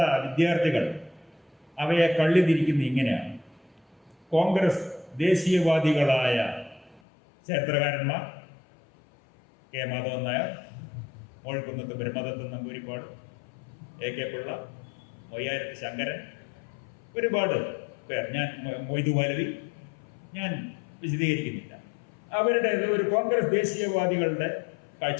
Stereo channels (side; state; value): right; drops out; at 7.0 s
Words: വിദ്യാർത്ഥികൾ അവയെ കള്ളിതിരിക്കുന്ന ഇങ്ങനെയാണ്. കോൺഗ്രസ് ദേശീയവാദികളായ ചരിത്രകാരന്മാർ കെ മാധവൻ നായർ, മോഴ്ക്കുന്നത്ത് ബ്രഹ്മദത്തൻ നമ്പൂരിപ്പാട്, AK പിള്ള, മൊയ്യാരത്ത് ശങ്കരൻ, ഒരുപാട് പേർ, ഞാൻ മൊയ്തു മൗലവി, ഞാൻ വിശദീകരിക്കുന്നില്ല. അവരുടെ ഒരു കോൺഗ്രസ് ദേശീയവാദികളുടെ